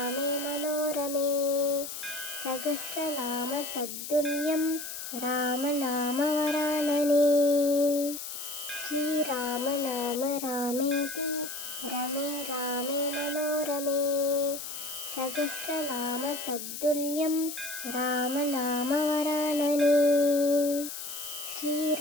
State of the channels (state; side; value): noise; left; hiss, 8 dB below the sound